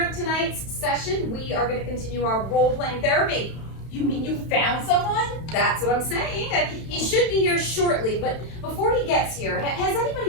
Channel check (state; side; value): late; right; 31 ms